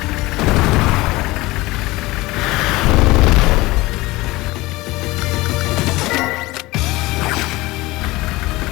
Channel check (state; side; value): quieter; right; 20.5 dB